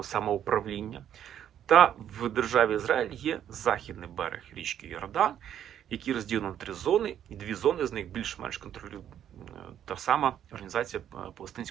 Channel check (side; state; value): left; quieter; 10.2 dB